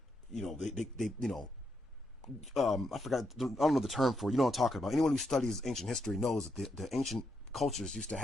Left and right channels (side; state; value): both; normal; correlation 0.81